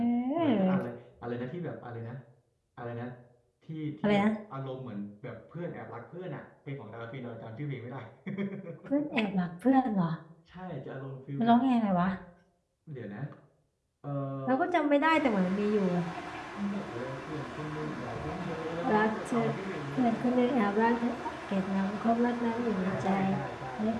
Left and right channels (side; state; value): both; identical; correlation 1.00